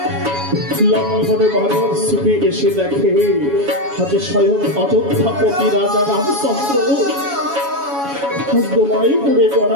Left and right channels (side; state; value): left; late; 7.2 ms